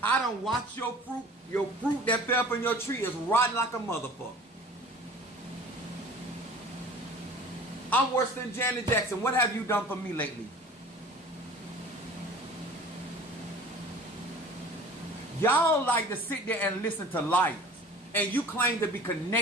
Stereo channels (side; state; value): both; normal; correlation 0.44